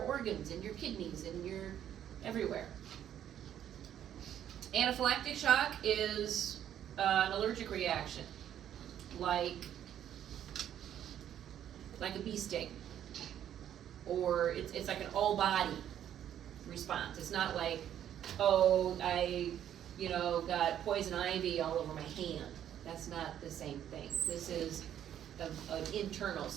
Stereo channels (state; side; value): quieter; left; 10.4 dB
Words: and your kidneys and your everywhere. Anaphylactic shock is an allergic reaction. like a bee sting. Or it's like an all body response. It's not like, oh, I, got poison ivy all over my hand. That's not the same thing. This is an internal.